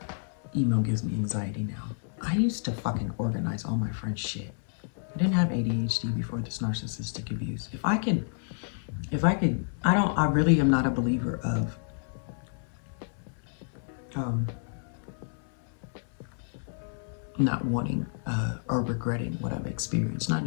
email gives me anxiety now. I used to fucking organize all my friends' shit. I didn't have ADHD before this narcissistic abuse. I really am not a believer of not wanting or regretting what I've experienced. Not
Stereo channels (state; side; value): silent; right; 58 dB below the other